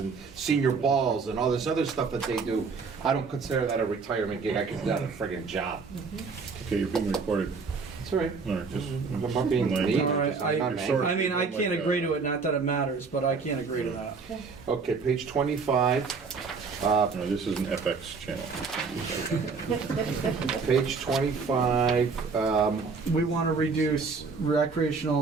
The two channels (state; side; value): quieter; left; 4.8 dB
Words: senior balls and all this other stuff that they do. I don't consider that a retirement gig, I consider that a friggin' job. Okay, you're being recorded. That's all right. All right, just. I'm not being mean. all right, I'm not Sorry. mad. I mean, I can't agree to it, not that it matters, but I can't agree to that. Okay, page 25. No, this is an FX channel. Page 25, We want to reduce